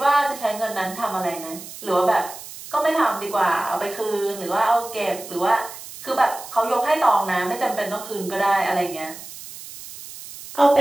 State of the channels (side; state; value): right; noise; hiss, 14 dB below the sound